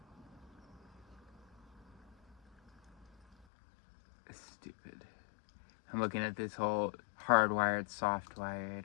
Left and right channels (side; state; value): right; drops out; at 3.5 s